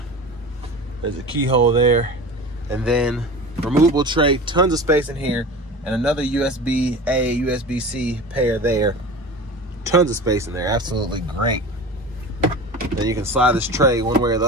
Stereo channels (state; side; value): normal; both; correlation 0.34